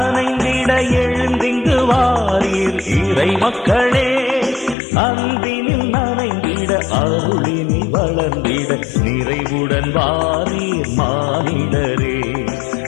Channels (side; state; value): right; drops out; at 4.8 s